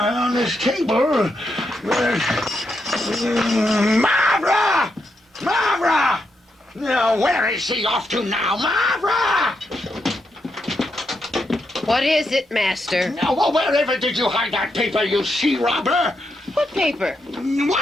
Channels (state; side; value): normal; both; correlation 0.82